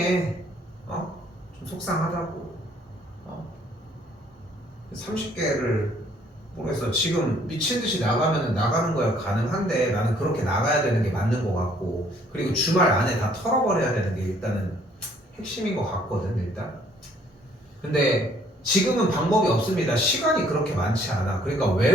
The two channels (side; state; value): both; normal; correlation 0.62